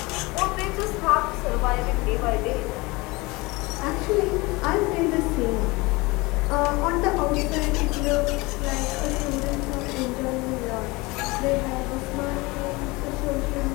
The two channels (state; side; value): quieter; right; 23.7 dB